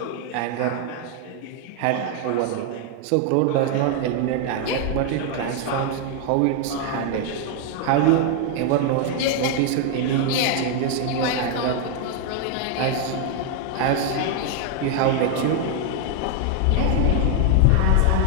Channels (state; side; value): different; both; correlation 0.00